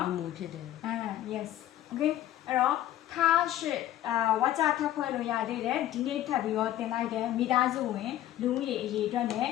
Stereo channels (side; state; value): right; quieter; 13.1 dB